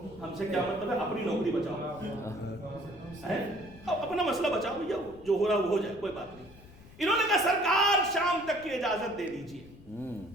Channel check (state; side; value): noise; left; rumble, 21 dB below the sound